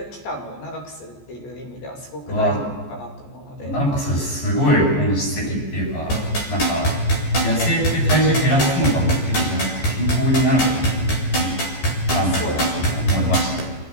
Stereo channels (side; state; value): right; late; 14 ms